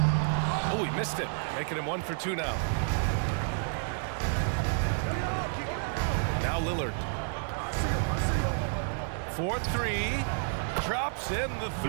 Oh, he missed it. Making him 1 for 2 now. Now Lillard. 4-3. Drops in the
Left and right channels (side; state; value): left; silent; 58 dB below the other